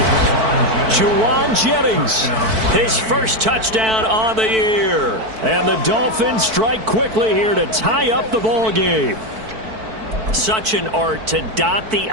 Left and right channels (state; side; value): late; left; 4.5 ms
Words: Juwan Jennings, his first touchdown on the year. And the Dolphins strike quickly here to tie up the ball game. Such an art to dot the